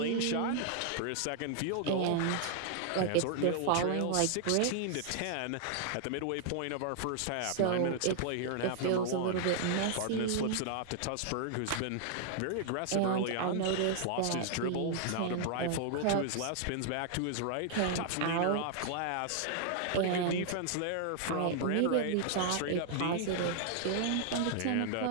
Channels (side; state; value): both; different; correlation 0.00